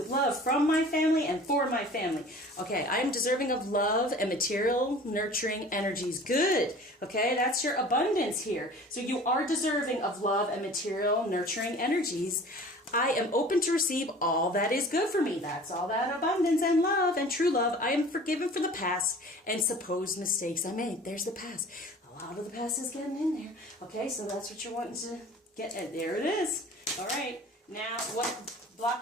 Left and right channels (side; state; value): both; normal; correlation 0.44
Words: love from my family and for my family. Okay, I am deserving of love and material nurturing energies. Good. Okay, that's your abundance here. So you are deserving of love and material nurturing energies. I am open to receive all that is good for me. That's all that abundance and love and true love. I am forgiven for the past and supposed mistakes I made. There's the past. A lot of the past is getting in there. Okay, so that's what you're wanting to get. There it is. All right. Now, what